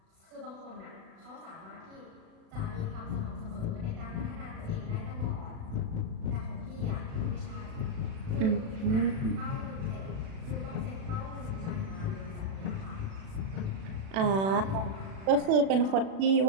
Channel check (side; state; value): left; late; 36 ms